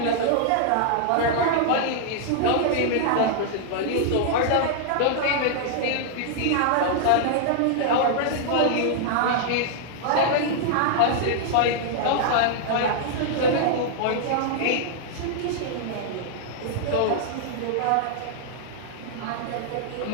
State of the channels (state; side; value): different; both; correlation -0.01